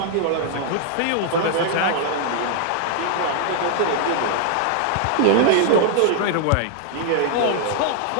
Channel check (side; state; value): both; different; correlation 0.00